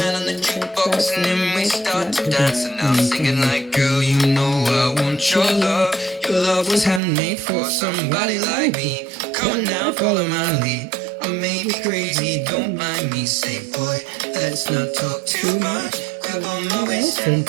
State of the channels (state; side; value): drops out; left; at 7.0 s